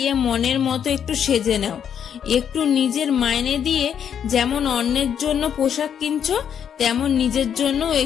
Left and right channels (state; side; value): quieter; right; 8.5 dB